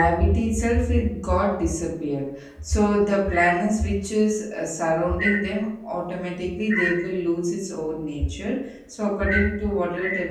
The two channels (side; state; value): both; identical; correlation 1.00